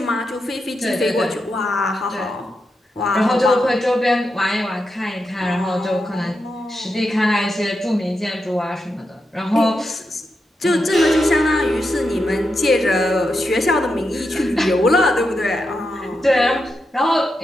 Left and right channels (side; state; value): both; normal; correlation 0.86